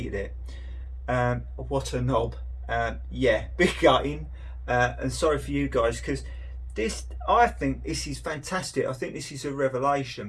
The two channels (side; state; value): both; identical; correlation 1.00